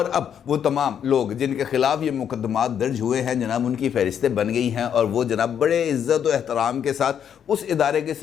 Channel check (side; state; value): right; quieter; 8.6 dB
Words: अब वो तमाम लोग जिनके खिलाफ ये मुकदमात दर्ज हुए हैं जनाब, उनकी फहरिस्तें बन गई हैं और वो जनाब बड़े इज़्ज़त और एहतराम के साथ उस इदारे के